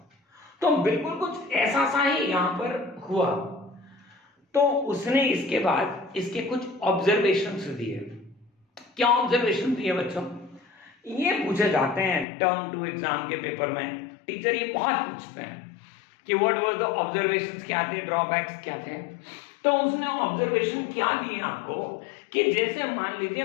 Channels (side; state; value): right; drops out; at 12.2 s